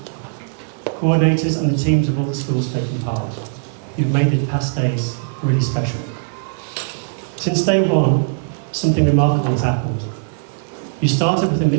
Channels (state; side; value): silent; left; 56 dB below the other